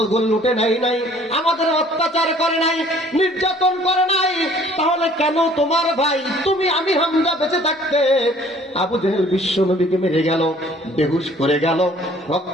লুটে নেয় নাই, আমাদের অত্যাচার করে নাই, নির্যাতন করে নাই। তাহলে কেন তোমার ভাই তুমি আমির হামজা বেঁচে থাকতে আবু জেহেল বিশ্ব নবীকে মেরে গেল, বেহুশ করে গেল,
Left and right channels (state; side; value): normal; both; correlation 0.55